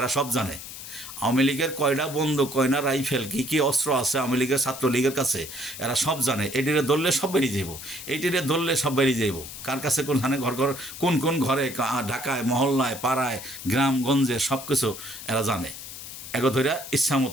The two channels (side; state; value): left; noise; hiss, 11 dB below the sound